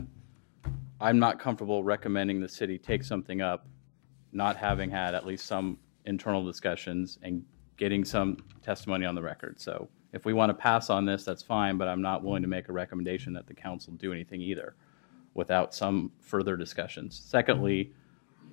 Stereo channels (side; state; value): right; silent; digital silence